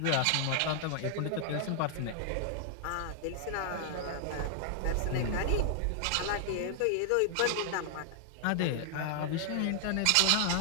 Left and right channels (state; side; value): different; both; correlation -0.01